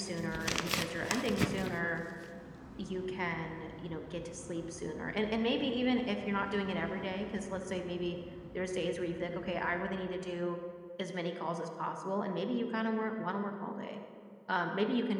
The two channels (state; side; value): identical; both; correlation 1.00